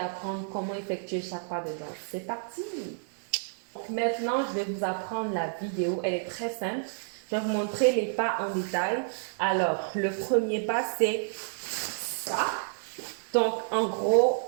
comment effectuer chaque pas de danse. C'est parti! Donc maintenant, je vais vous apprendre la vidéo. Elle est très simple. Je vais vous montrer les pas en détail. Alors, le premier pas, c'est ça. Donc, en gros,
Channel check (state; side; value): silent; left; digital silence